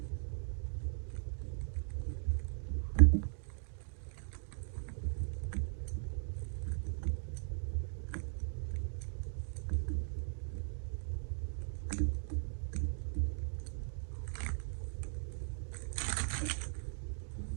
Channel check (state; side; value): silent; left; digital silence